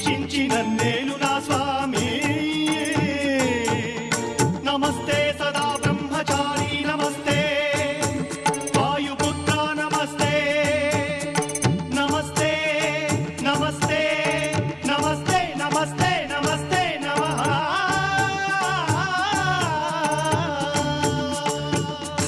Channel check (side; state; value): both; identical; correlation 1.00